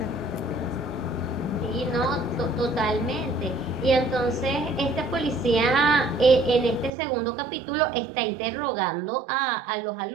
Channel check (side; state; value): left; drops out; at 6.9 s